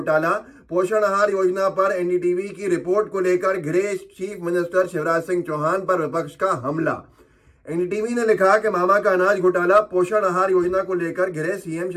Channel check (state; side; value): identical; both; correlation 1.00